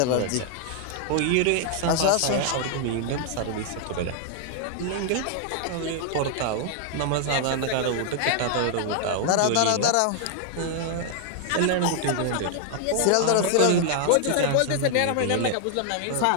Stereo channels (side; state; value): both; different; correlation 0.00